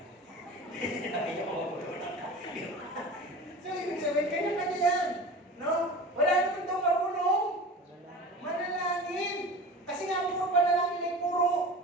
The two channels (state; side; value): normal; both; correlation 0.35